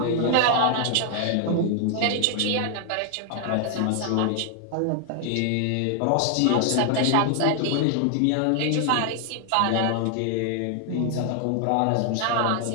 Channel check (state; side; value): different; both; correlation 0.00